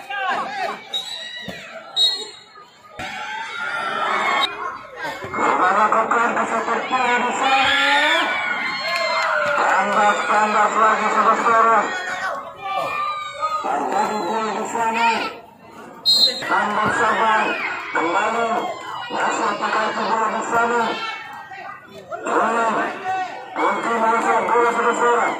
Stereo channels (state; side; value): identical; both; correlation 1.00